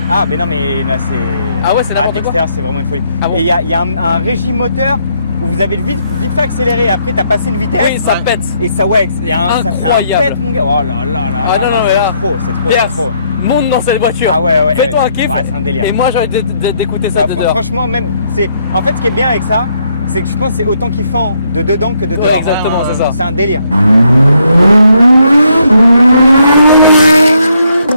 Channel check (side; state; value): both; inverted; correlation -0.73